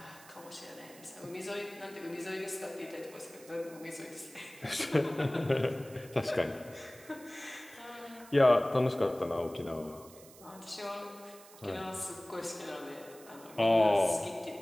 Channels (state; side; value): noise; right; hiss, 20 dB below the sound